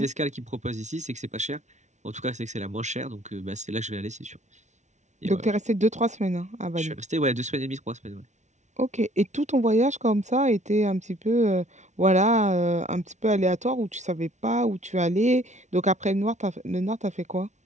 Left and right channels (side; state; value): left; late; 0.34 ms